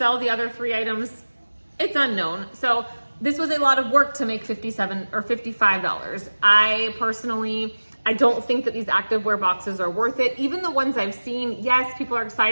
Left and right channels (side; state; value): both; inverted; correlation -1.00